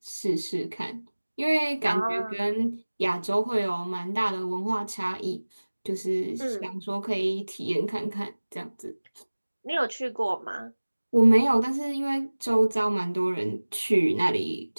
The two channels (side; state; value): both; inverted; correlation -1.00